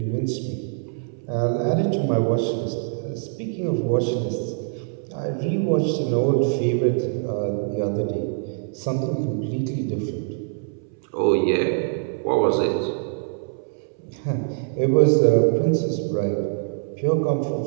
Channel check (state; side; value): silent; left; 62 dB below the other